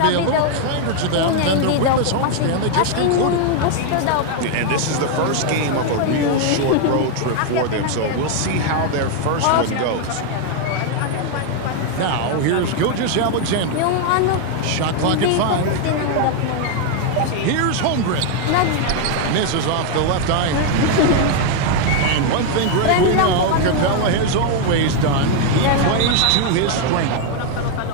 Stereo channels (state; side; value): different; both; correlation 0.01